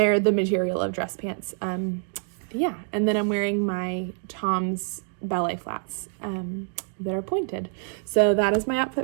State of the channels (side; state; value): left; silent; 60 dB below the other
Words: the material of dress pants. Yeah, and then I'm wearing my Tom's ballet flats that are pointed. So that is my